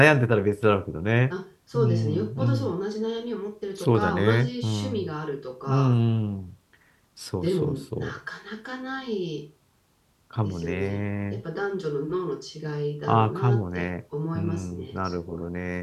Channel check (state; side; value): identical; both; correlation 1.00